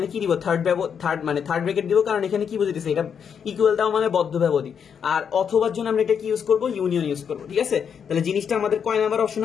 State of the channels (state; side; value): quieter; right; 7.3 dB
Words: কি দিব, থার্ড ব্র্যাকেট দিব, কারণ এখানে কি বোঝাইতেছে, এটা ইকুয়াল দাও মানে বদ্ধ ব্যবধি। আর অথবার জন্য আমরা এটা কি ইউজ করব, ইউনিয়ন ইউজ করব। ঠিক আছে, তাহলে জিনিসটা আমাদের কয় নাম্বার অপশন